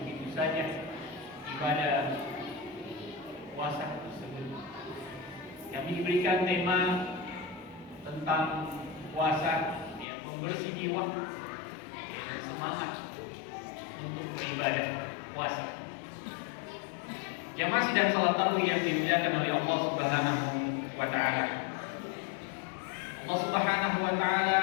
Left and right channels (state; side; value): drops out; right; at 10.1 s